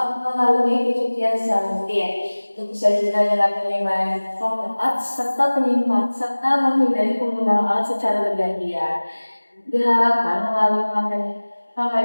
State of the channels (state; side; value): inverted; both; correlation -1.00